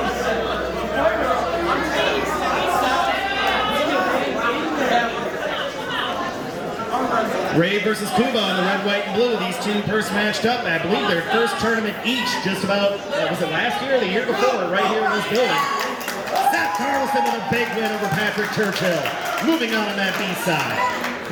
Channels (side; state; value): both; identical; correlation 1.00